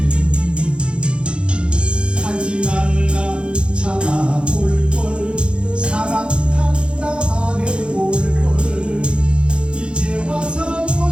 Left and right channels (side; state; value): left; late; 0.056 ms